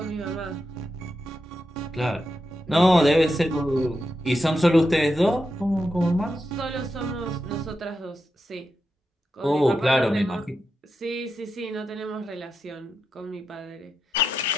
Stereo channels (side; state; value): both; normal; correlation 0.87